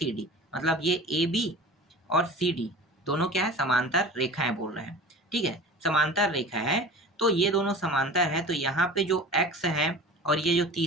डी, मतलब ये ए बी और सी डी दोनों क्या है, समांतर रेखाएं बोल रहे हैं, ठीक है। समांतर रेखा है तो ये दोनों समांतर है, तो यहाँ पे जो x है और ये जो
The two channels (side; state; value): both; normal; correlation 0.38